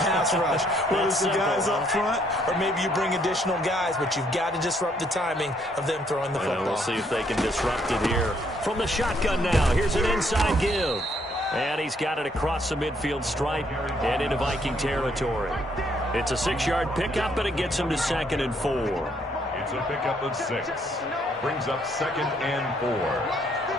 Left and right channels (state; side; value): normal; both; correlation 0.69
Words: rush. Whether it's the guys up front, or maybe you bring additional guys, but you've got to disrupt the timing of them throwing the football. We'll see if they can disrupt it here. From the shotgun now, here's an inside give. And he's got it across the midfield stripe and into Viking territory. It's a 6-yard pickup, and it gets him to 2nd and 4. It's a pickup of 6. Brings up 2nd and 4.